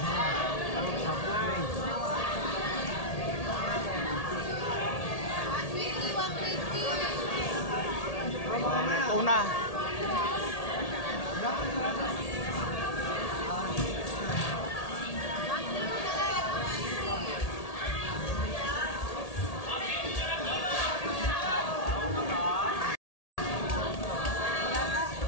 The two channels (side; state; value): right; late; 1.8 ms